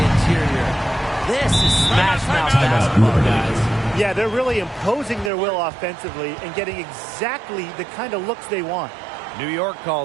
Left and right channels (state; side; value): drops out; left; at 5.3 s